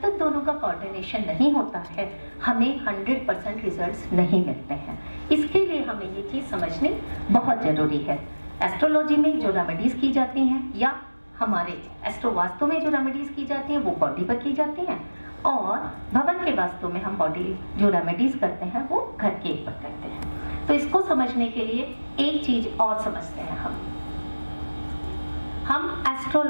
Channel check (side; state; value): both; inverted; correlation -1.00